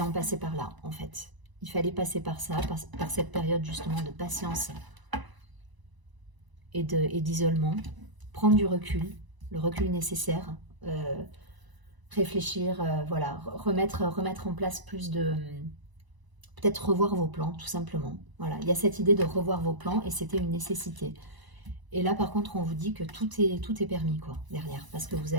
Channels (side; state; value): left; late; 1.0 ms